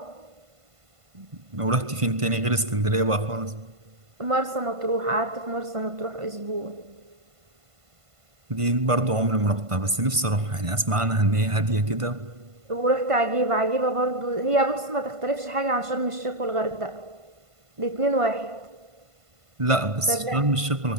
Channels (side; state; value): left; late; 1.5 ms